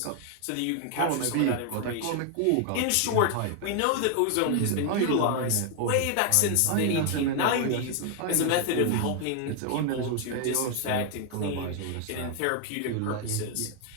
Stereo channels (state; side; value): different; both; correlation 0.00